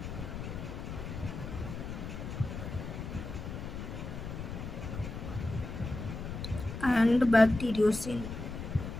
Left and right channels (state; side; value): noise; left; rumble, 7 dB below the sound